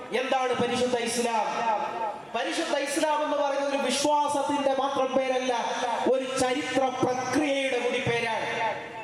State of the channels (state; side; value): identical; both; correlation 1.00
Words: എന്താണ് പരിശുദ്ധ ഇസ്ലാം. പരിശുദ്ധ ഇസ്ലാം എന്ന് പറയുന്നത് ഒരു വിശ്വാസത്തിന്റെ മാത്രം പേരല്ല, ഒരു ചരിത്ര പ്രക്രിയയുടെ കൂടി പേരാണ്.